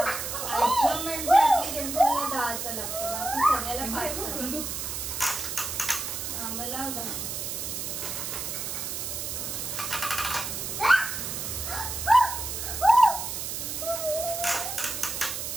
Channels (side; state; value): right; noise; hiss, 4 dB below the sound